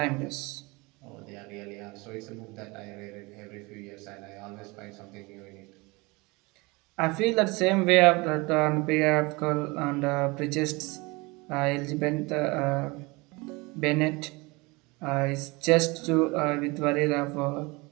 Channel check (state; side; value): quieter; left; 25.0 dB